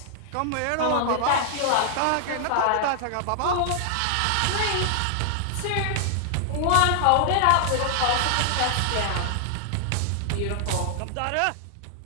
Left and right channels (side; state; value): both; different; correlation -0.01